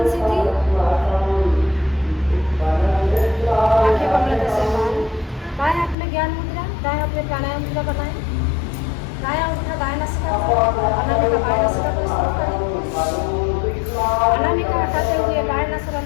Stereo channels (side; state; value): right; drops out; at 6.0 s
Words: सीधी, आंखें कमलता से बाहर, बाएं हाथ में ज्ञान मुद्रा, दाएं हाथ में प्राणायाम मुद्रा बनाएं। दायां उठा दाएं नासिका को, अनामिका बाएं नासिका को स्थिर करें। अनामिका हटाते हुए बाएं